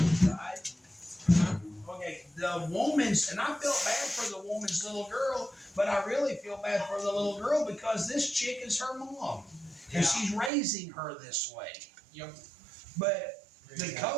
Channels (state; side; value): drops out; left; at 10.5 s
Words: right? Okay, the woman's, and I felt bad for the woman's little girl, but I really feel bad for the little girl because this chick is her mom. And she's raising her this way. Yep. But the